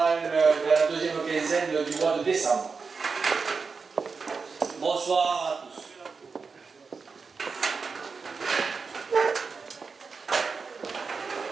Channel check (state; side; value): quieter; left; 4.9 dB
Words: dans la deuxième quinzaine du mois de décembre. Bonsoir à tous.